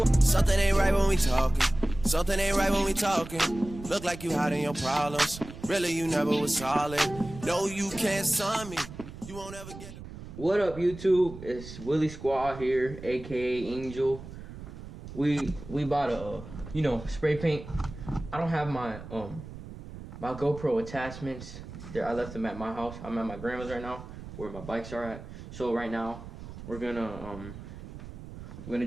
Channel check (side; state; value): right; noise; rumble, 13 dB below the sound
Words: Something ain't right when we talking. Something ain't right when we talking. Look like you hiding your problems. Really, you never was solid. No, you can't sign me. You won't ever get... What up, YouTube? It's Willie Squad here, aka Angel. We bought a spray paint. I don't have my my GoPro attachments there. I left them at my house. I'm at my grandma's right now, where my bikes are at. So right now we're gonna